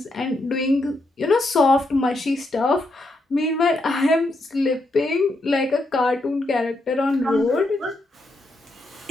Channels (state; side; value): normal; both; correlation 0.81